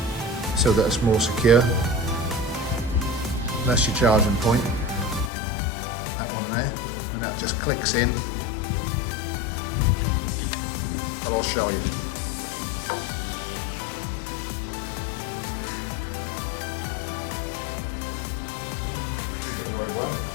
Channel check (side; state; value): right; drops out; at 5.3 s